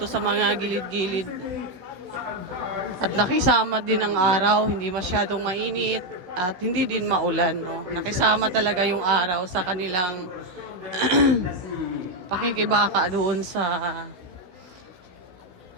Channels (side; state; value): left; late; 16 ms